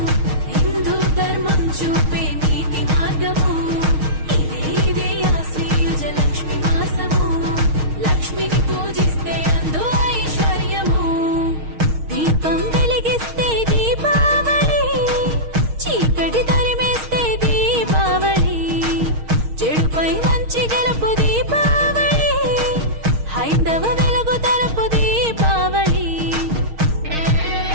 హిందూ ధర్మం చూపే నీతి మార్గము. ఇదే ఇదే ఆశ్వయుజ లక్ష్మి మాసము, లక్ష్మిని పూజిస్తే అందు ఐశ్వర్యము. దీపం వెలిగిస్తే దీపావళి, చీకటి తరిమేస్తే దీపావళి, చెడుపై మంచి గెలుపు దీపావళి, హైందవ వెలుగు తలుపు దీపావళి.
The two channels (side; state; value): left; late; 6.4 ms